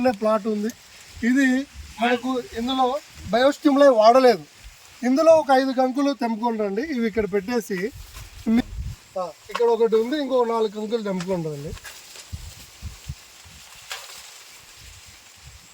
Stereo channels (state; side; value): identical; both; correlation 1.00